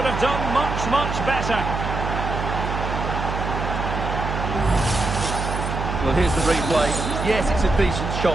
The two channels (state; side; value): noise; right; hum, 3 dB below the sound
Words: have done much, much better. Well, here's the replay. Yes, it's a decent shot,